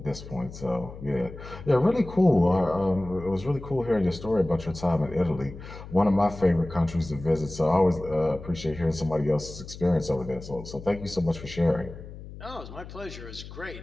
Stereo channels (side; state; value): left; noise; hum, 14 dB below the sound